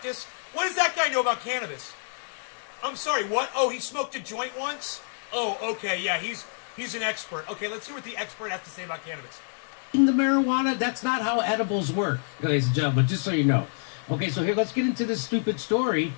What does that guy know about cannabis? I'm sorry, what? Oh, he smoked a joint once? Oh, okay, yeah, he's an expert. Okay, let's see what the expert has to say about cannabis. In the marijuana, that's not how edibles work, ladies and gentlemen, just so you know. Okay, so here, let's get into this stupid story.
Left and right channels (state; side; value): silent; right; 60 dB below the other